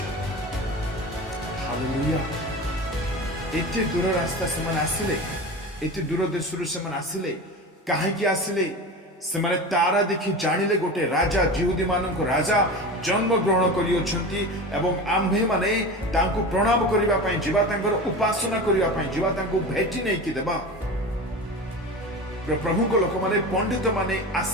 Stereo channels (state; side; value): normal; both; correlation 0.30